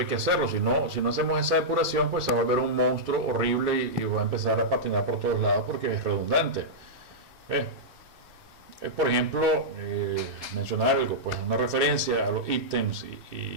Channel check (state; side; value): late; left; 2.7 ms